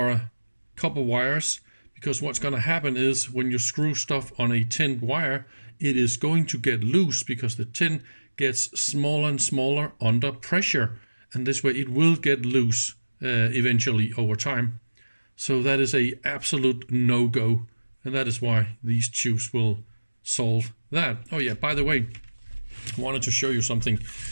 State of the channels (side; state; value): both; inverted; correlation -1.00